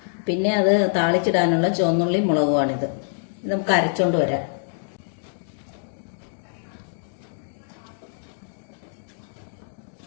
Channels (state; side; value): silent; right; digital silence